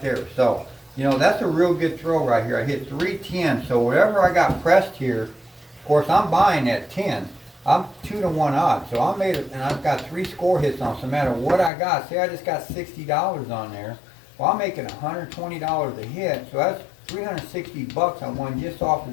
there. So, you know, that's a real good throw right here. I hit 3 10. So whatever I got pressed here, of course, I'm buying at 10. I'm 2 to 1 odds, so I made it, and I've got 3 score hits on. So no matter what I got, say I just got $60 on there. Well, I'm making $120 a hit, so that's $360 I won just off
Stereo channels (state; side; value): drops out; right; at 11.7 s